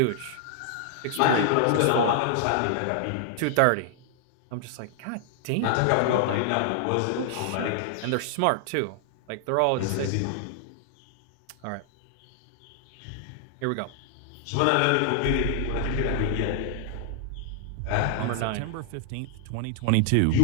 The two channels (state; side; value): different; both; correlation 0.00